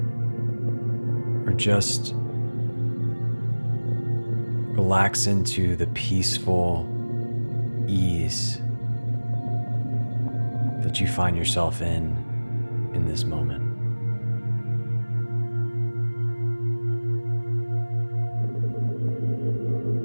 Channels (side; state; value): both; inverted; correlation -1.00